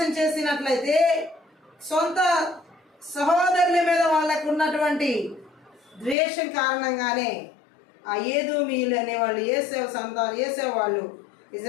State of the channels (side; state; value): right; drops out; at 6.2 s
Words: చేసినట్లయితే సొంత సహోదరుల మీద వాళ్ళకు ఉన్నటువంటి ద్వేషం కారణంగానే ఆ ఏదోమీయులు అనేవాళ్ళు ఏసేవ వాళ్ళు